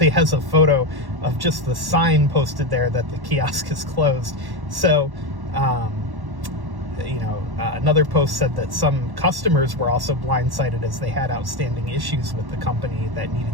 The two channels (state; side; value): late; left; 1.1 ms